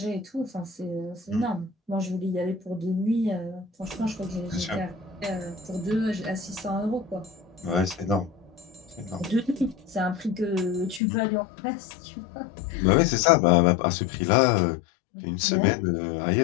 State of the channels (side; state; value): right; drops out; at 11.0 s